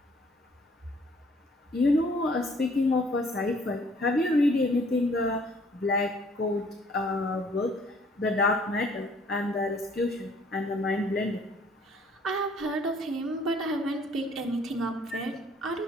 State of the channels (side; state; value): both; normal; correlation 0.59